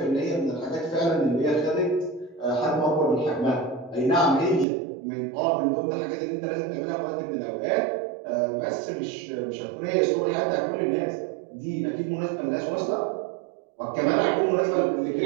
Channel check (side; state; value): left; drops out; at 4.7 s